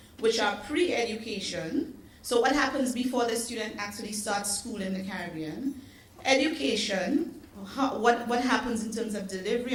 which are pre-education. So what happens before the student actually starts school in the Caribbean? Education, what happens in terms of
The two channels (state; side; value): identical; both; correlation 1.00